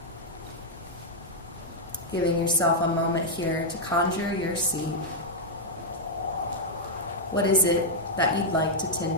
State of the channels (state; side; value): normal; both; correlation -0.05